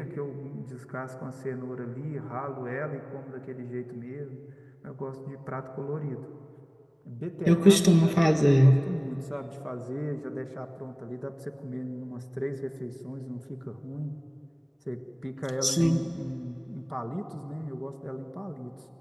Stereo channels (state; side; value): identical; both; correlation 1.00